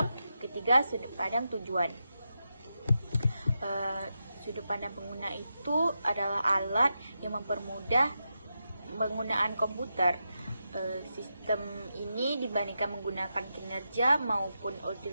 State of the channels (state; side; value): inverted; both; correlation -0.87